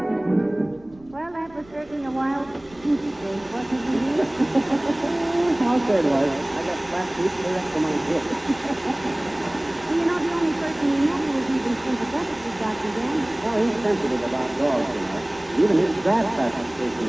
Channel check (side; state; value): right; noise; rumble, 26 dB below the sound